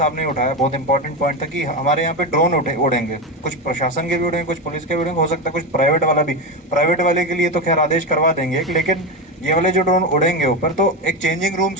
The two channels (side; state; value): both; normal; correlation 0.15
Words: ने उठाया, बहुत इंपॉर्टेंट पॉइंट था कि हमारे यहाँ पे ड्रोन उड़ेंगे, कुछ प्रशासन के भी उड़ेंगे, कुछ पुलिस के भी उड़ेंगे, हो सकता है कुछ प्राइवेट वाला भी। प्राइवेट वाले के लिए तो खैर आदेश करवा देंगे, लेकिन ये वाले जो ड्रोन उड़ेंगे ऊपर, तो एक चेंजिंग